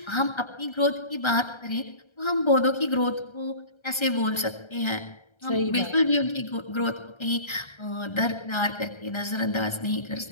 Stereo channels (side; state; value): right; late; 1.3 ms